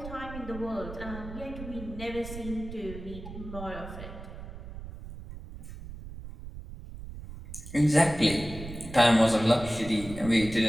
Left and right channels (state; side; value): noise; right; rumble, 12 dB below the sound